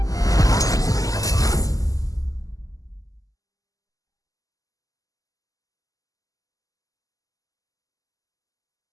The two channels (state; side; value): late; right; 0.17 ms